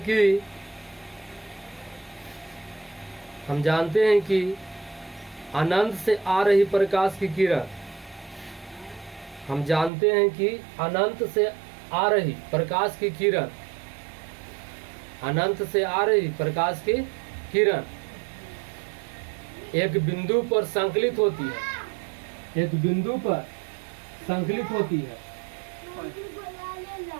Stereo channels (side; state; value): left; drops out; at 9.9 s